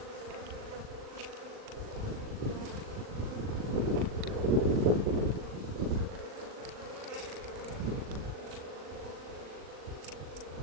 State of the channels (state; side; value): late; left; 39 ms